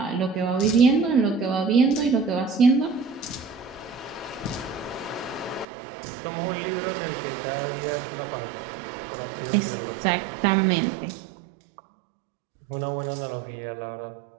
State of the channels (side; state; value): left; drops out; at 5.7 s